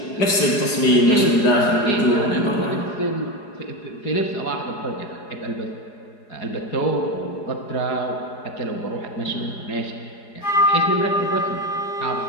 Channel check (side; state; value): right; late; 4.8 ms